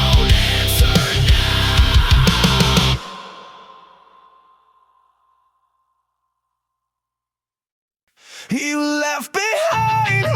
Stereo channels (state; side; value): identical; both; correlation 1.00